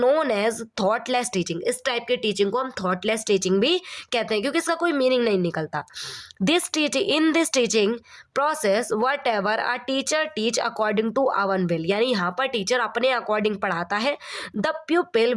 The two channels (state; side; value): identical; both; correlation 1.00